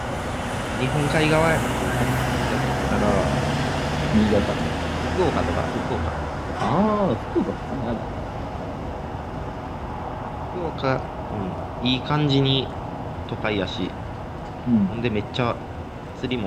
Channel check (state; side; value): identical; both; correlation 1.00